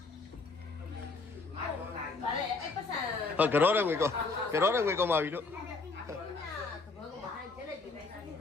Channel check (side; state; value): right; quieter; 3.8 dB